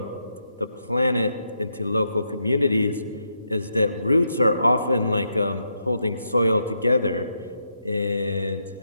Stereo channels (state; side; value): inverted; both; correlation -0.81